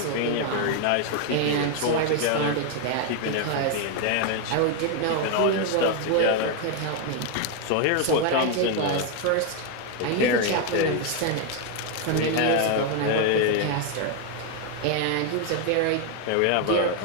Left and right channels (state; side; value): different; both; correlation 0.01